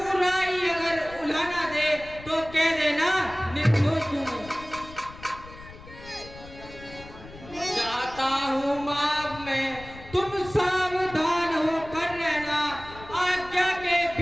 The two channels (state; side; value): noise; left; rumble, 17 dB below the sound